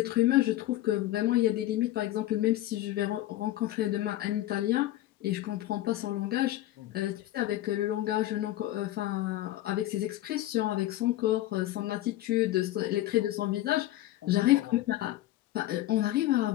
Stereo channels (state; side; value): quieter; right; 15.0 dB